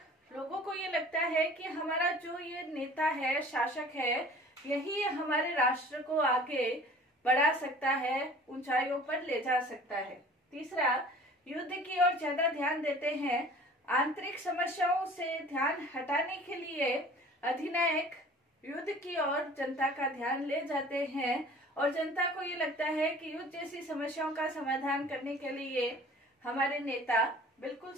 लोगों को ये लगता है कि हमारा जो ये नेता है, शासक है, यही हमारे राष्ट्र को आगे बढ़ा सकता है, ऊंचाइयों पर ले जा सकता है। तीसरा, युद्ध की ओर ज्यादा ध्यान देते हैं। आंतरिक समस्याओं से ध्यान हटाने के लिए अधिनायक युद्ध की ओर जनता का ध्यान ले जाते हैं और जनता को ये लगता है कि युद्ध जैसी समस्याओं का समाधान करने के लिए हमारे नेता बिल्कुल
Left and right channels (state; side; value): normal; both; correlation 0.47